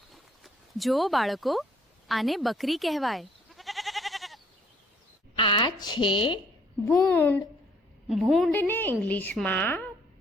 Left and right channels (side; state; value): both; normal; correlation 0.63